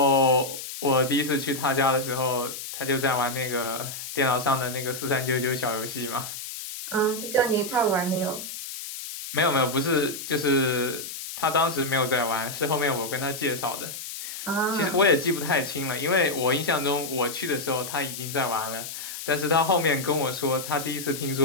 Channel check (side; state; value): left; noise; hiss, 9 dB below the sound